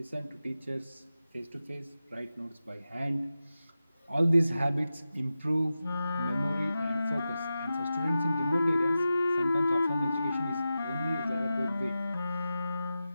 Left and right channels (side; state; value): both; inverted; correlation -0.92